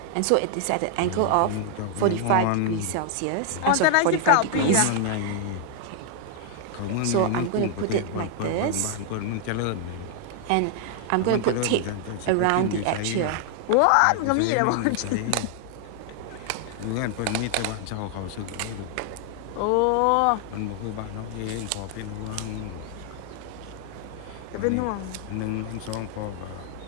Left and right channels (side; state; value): both; different; correlation 0.00